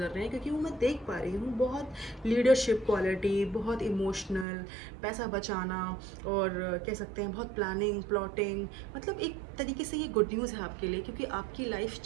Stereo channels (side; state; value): left; drops out; at 4.5 s